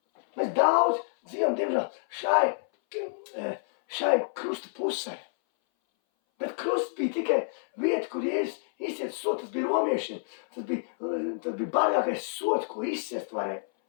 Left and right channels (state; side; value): silent; right; 59 dB below the other